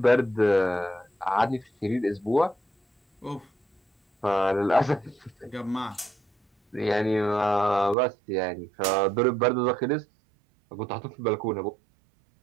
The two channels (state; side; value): drops out; left; at 8.0 s